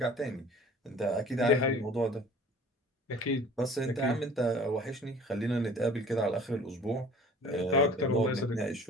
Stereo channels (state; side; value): normal; both; correlation 0.48